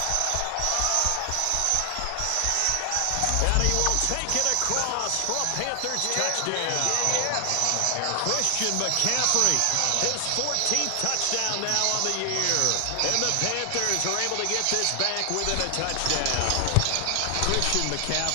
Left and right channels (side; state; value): both; different; correlation 0.00